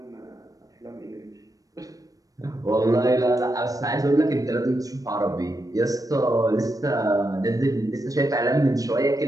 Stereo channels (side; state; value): left; late; 0.17 ms